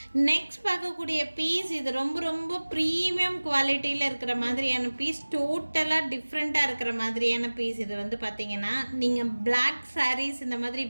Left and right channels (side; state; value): both; inverted; correlation -1.00